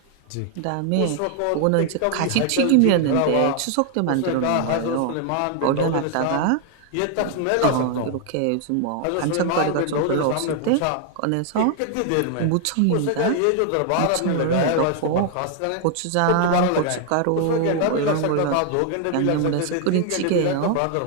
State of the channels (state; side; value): different; both; correlation 0.00